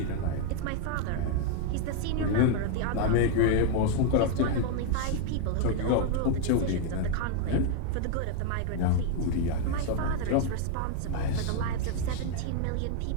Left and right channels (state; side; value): different; both; correlation 0.00